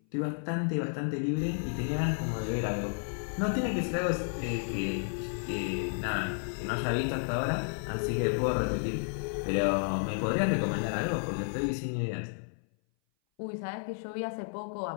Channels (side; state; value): right; silent; 57 dB below the other